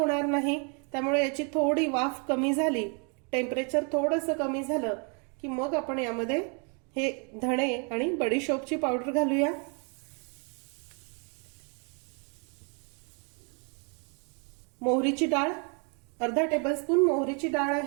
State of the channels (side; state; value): left; quieter; 37.0 dB